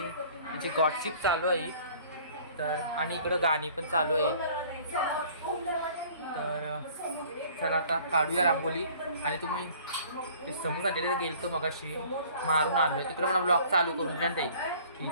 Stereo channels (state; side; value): inverted; both; correlation -0.51